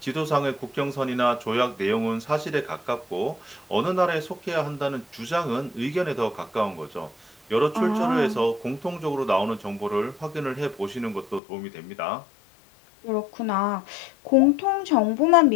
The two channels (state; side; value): drops out; right; at 11.4 s